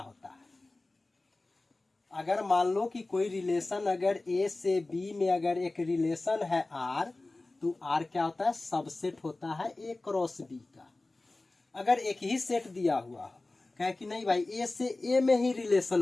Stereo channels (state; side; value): quieter; right; 3.1 dB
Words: है। अगर मान लो कि कोई रिलेशन अगर ए से बी में अगर एक रिलेशन है आर, तो आर क्या होता है, सबसेट होता है ए क्रॉस बी का। अगर एक ही सेट दिया हुआ हो, कहे कि नहीं भाई ए से ए में ही